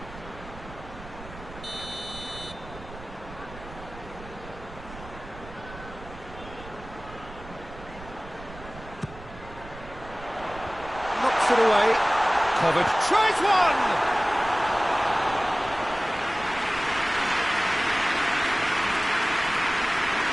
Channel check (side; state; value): right; noise; rumble, 16 dB below the sound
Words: Knocks it away. Kovacic tries one!